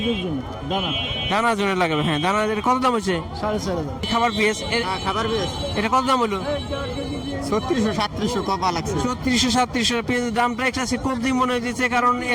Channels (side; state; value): both; identical; correlation 1.00